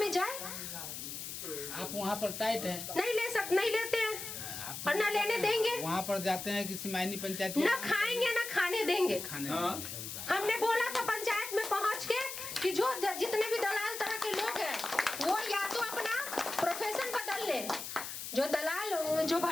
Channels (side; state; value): left; noise; hiss, 7 dB below the sound